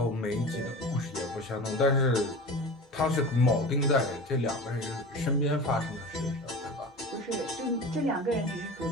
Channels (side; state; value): both; normal; correlation 0.33